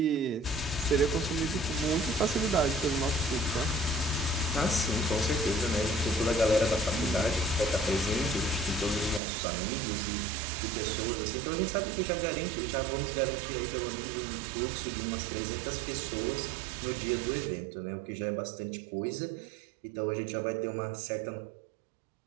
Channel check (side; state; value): left; drops out; at 9.2 s